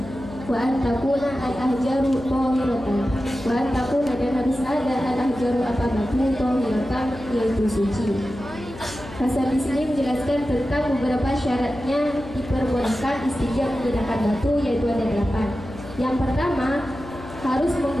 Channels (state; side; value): noise; left; hum, 15 dB below the sound